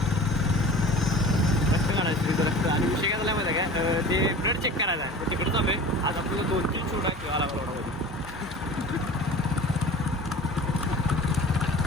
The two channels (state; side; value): normal; both; correlation 0.39